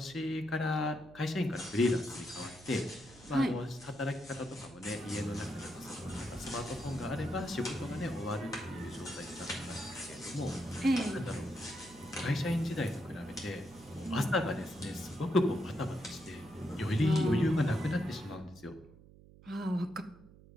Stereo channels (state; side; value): noise; right; hum, 21 dB below the sound